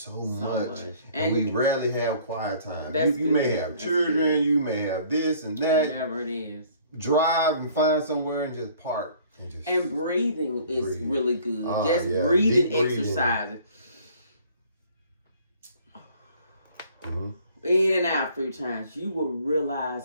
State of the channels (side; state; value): both; inverted; correlation -0.55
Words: much. And we rarely have quiet time. You may have children, you may have this and that. Whatever it is. Drive and find somewhere and just park. And breathing is really good. Breathing exercises. In and out 3 times, you will realize